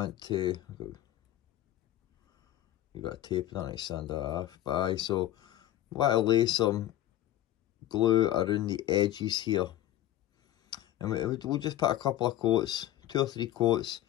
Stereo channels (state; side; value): quieter; right; 13.6 dB